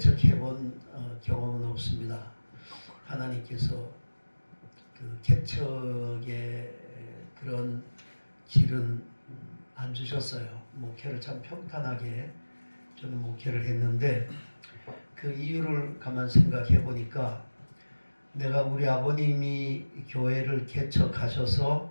경험은 없습니다. 하나님께서 그 개척의 그런 길은 안 주셨어요. 목회를 참 평탄하게 저는 목회를 했는데 그 이유를 가만 생각해 보니까 내가 우리 아버님이 교회를 개척하셔서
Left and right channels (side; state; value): both; inverted; correlation -1.00